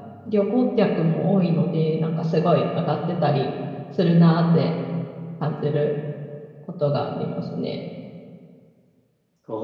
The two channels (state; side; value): identical; both; correlation 1.00